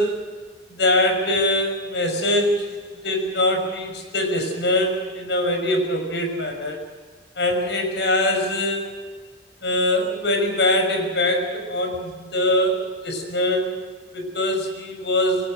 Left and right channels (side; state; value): both; normal; correlation -0.05